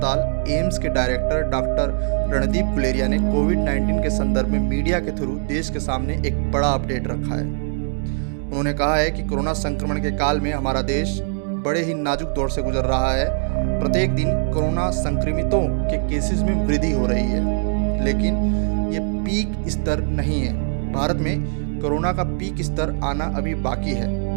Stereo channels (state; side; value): silent; left; digital silence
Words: एम्स के डायरेक्टर डॉक्टर रणदीप गुलेरिया ने कोविड-19 के संदर्भ में मीडिया के थ्रू देश के सामने एक बड़ा अपडेट रखा है। उन्होंने कहा है कि कोरोना संक्रमण के काल में हमारा देश बड़े ही नाजुक दौर से गुजर रहा है। प्रत्येक दिन कोरोना संक्रमितों के केसेस में वृद्धि हो रही है, लेकिन ये पीक स्तर नहीं है। भारत में कोरोना का पीक स्तर आना अभी बाकी है